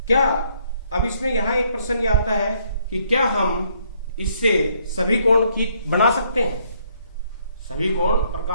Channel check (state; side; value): inverted; both; correlation -0.68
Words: क्या अब इसमें यहां एक प्रश्न ये आता है कि क्या हम इससे सभी कोण की बना सकते हैं? सभी कोण